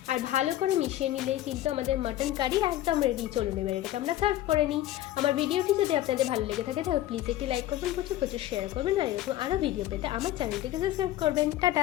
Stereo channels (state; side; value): quieter; right; 14.0 dB